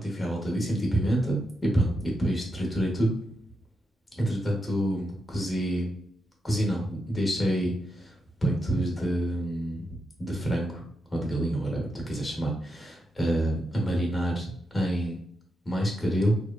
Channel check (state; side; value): normal; both; correlation 0.85